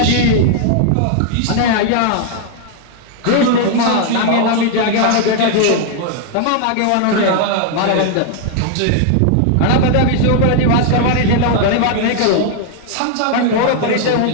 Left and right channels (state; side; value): different; both; correlation 0.00